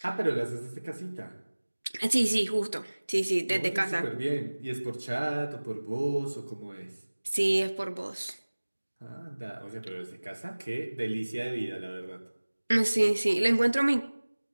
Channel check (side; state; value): both; inverted; correlation -1.00